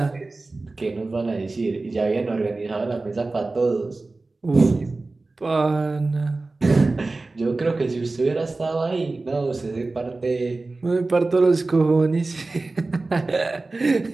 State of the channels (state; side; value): quieter; left; 3.4 dB